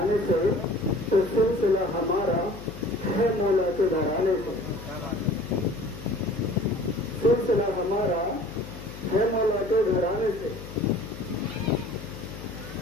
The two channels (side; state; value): left; noise; hum, 13 dB below the sound